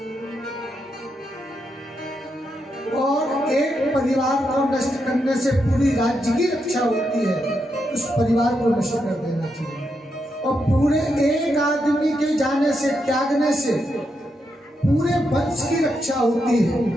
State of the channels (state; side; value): normal; both; correlation 0.83